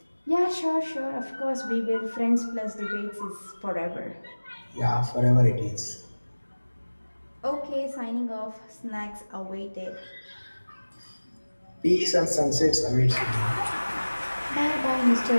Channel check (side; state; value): both; inverted; correlation -1.00